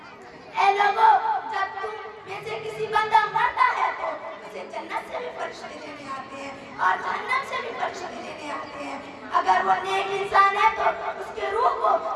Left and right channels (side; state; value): both; identical; correlation 1.00